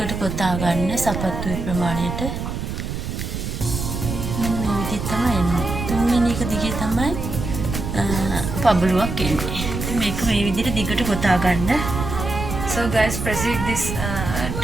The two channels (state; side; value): noise; right; rumble, 5 dB below the sound